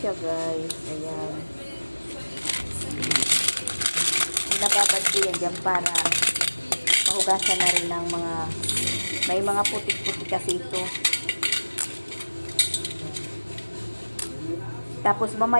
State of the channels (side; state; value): both; inverted; correlation -1.00